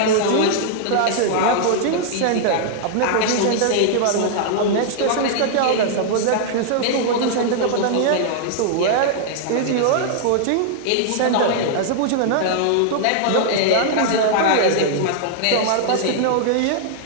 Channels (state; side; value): different; both; correlation -0.01